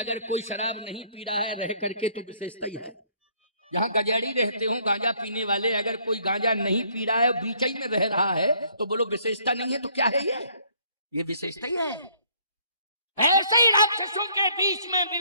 कोई शराब नहीं पी रहा है रह करके तो विशेषता ही है। जहां गजेड़ी रहते हो, गांजा पीने वाले, अगर कोई गांजा नहीं पी रहा है बीच ही में रह रहा है तो बोलो विशेषता नहीं है तो क्या है? ये विशेषता ही है। ऐसे ही राक्षसों के बीच में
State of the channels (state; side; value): inverted; both; correlation -0.63